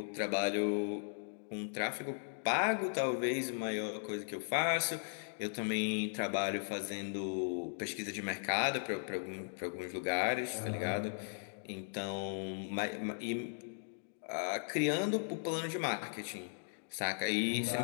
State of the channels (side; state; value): right; silent; digital silence